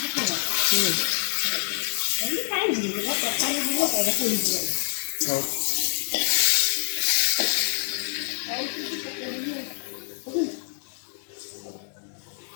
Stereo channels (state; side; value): silent; right; digital silence